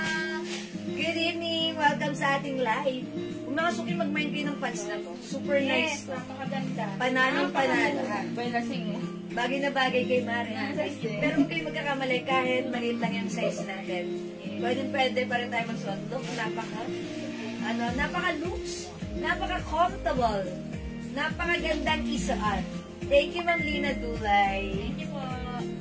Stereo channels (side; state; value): both; identical; correlation 1.00